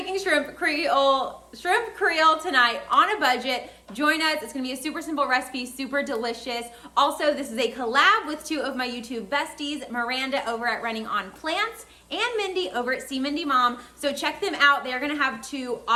shrimp creole tonight on a budget. Join us. It's gonna be a super simple recipe, super delicious. Also, this is a collab with two of my YouTube besties, MiRanda over at Running on Plants and Mindy over at See Mindy Mom. So check them out. They're gonna have two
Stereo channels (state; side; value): identical; both; correlation 1.00